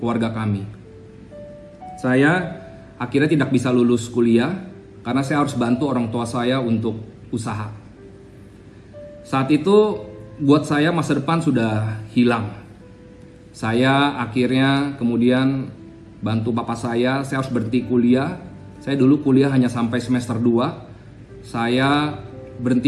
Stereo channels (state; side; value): identical; both; correlation 1.00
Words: kami. Saya akhirnya tidak bisa lulus kuliah karena saya harus bantu orang tua saya untuk usaha. Saat itu buat saya masa depan sudah hilang. Saya akhirnya kemudian bantu papa saya harus berhenti kuliah. Saya dulu kuliah hanya sampai semester 2. Saya